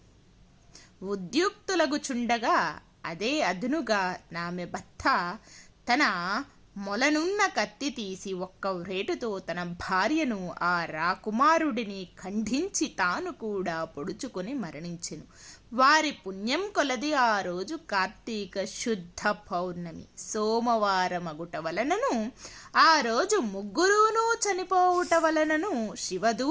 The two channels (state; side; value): identical; both; correlation 1.00